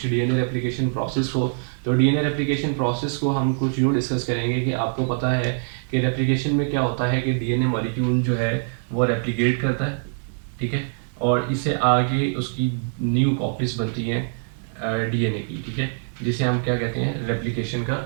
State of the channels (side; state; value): left; silent; digital silence